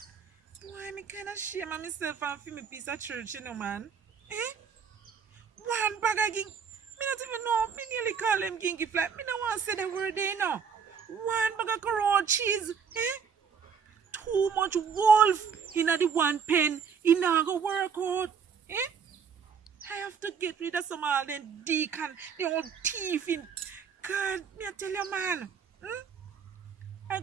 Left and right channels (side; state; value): left; quieter; 6.5 dB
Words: Why me kind of shame of myself and feel me piece of church, you know, man. One bag of ging. Me not even know. Me nearly call him gingy fly. Me don't want to say the word there, you know. One bag of raw cheese. Too much wolf in the one pen. It not go work out. I have to get rid of some all them deacon, the old thief in. God, me I tell you, man. I